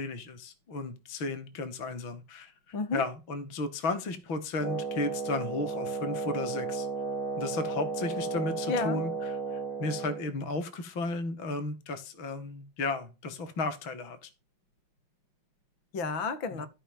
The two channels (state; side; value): late; right; 6.0 ms